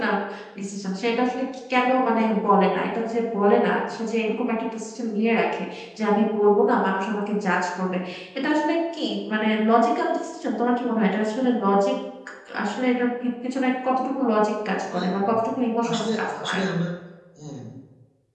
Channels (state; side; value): identical; both; correlation 1.00